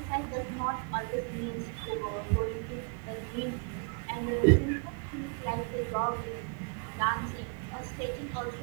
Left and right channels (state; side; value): quieter; left; 37.6 dB